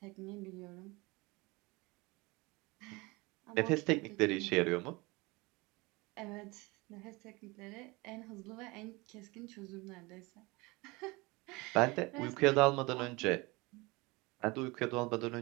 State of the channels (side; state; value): left; quieter; 24.5 dB